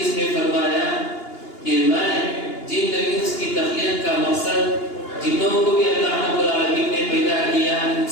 میں فرمایا کہ میں جن انس کی تخلیق کا مقصد، جنوں کو بھی اللہ رب العالمین نے پیدا کیا،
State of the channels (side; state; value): right; late; 2.8 ms